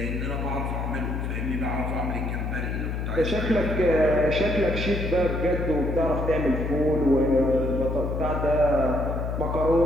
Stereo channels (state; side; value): noise; left; hum, 3 dB below the sound